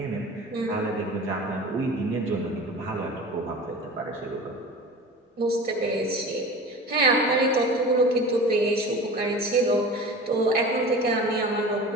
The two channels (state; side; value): normal; both; correlation 0.36